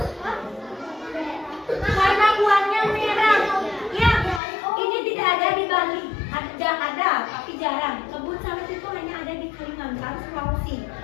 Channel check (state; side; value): drops out; right; at 4.4 s